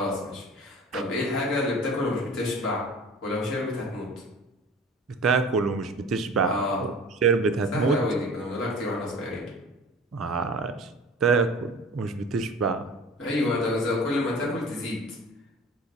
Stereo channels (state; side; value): normal; both; correlation 0.41